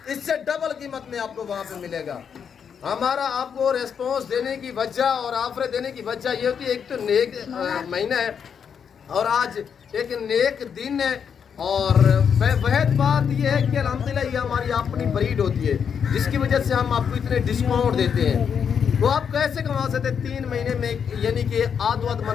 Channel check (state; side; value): quieter; right; 7.2 dB